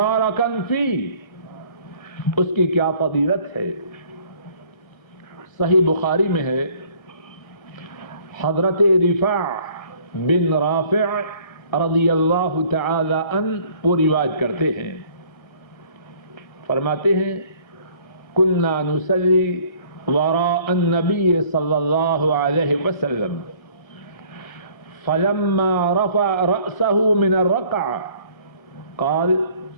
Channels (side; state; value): right; late; 1.6 ms